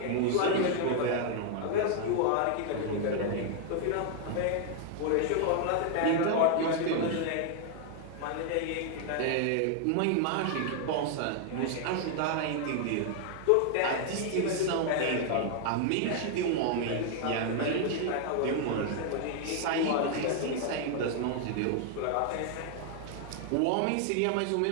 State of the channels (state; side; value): different; both; correlation 0.00